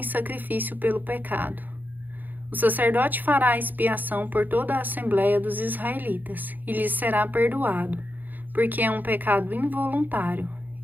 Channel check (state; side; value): late; left; 0.086 ms